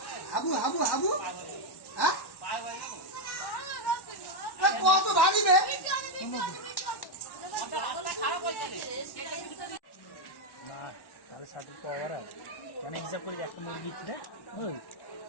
হাবু হাবু হাবু হ্যাঁ কত ভারী রে। অনেক হিসাব করি একটা মুরগি ছিল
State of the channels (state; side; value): late; right; 1.1 ms